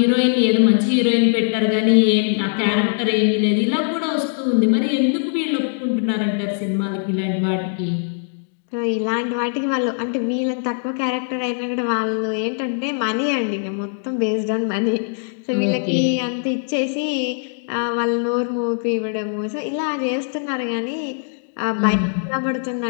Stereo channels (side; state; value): right; silent; digital silence